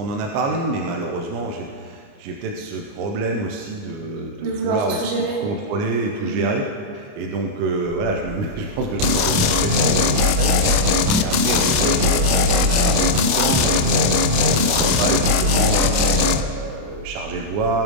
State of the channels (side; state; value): left; late; 28 ms